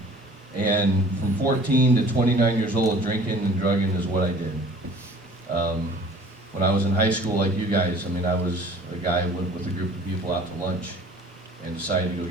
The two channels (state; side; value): normal; both; correlation 0.48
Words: And from 14 to 29 years old, drinking and drugging is what I did. When I was in high school, like you guys, I mean, I was a guy who went with a group of people out to lunch and decided to go